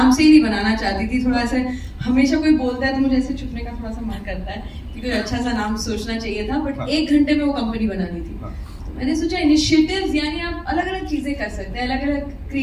से ही नहीं बनाना चाहती थी। थोड़ा ऐसे हमेशा कोई बोलता है तो मुझे ऐसे छुपने का थोड़ा सा मन करता है कि कोई अच्छा सा नाम सोचना चाहिए था, बट 1 घंटे में वो कंपनी बनानी थी। मैंने सोचा इनिशिएटिव्स यानी आप अलग अलग चीजें कर सकते हैं, अलग अलग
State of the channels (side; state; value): both; identical; correlation 1.00